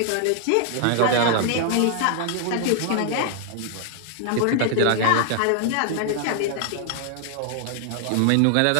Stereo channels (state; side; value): different; both; correlation 0.00